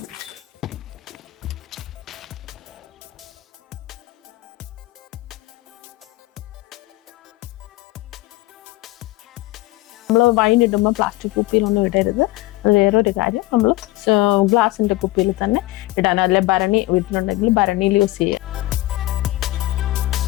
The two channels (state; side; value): quieter; right; 18.6 dB